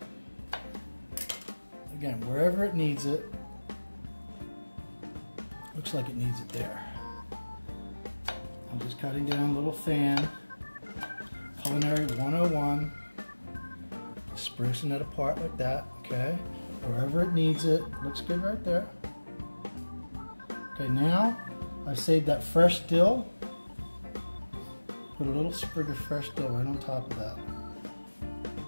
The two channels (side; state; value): both; inverted; correlation -1.00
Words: of, again, wherever it needs it. Looks like it needs it there. I'm just cutting down a little fan. Culinary 101. Sprucing it apart like that, okay? Wherever it needs it. Looks good right there. Okay, now I saved that fresh dill. Put a little sprig of fresh dill right on top of that.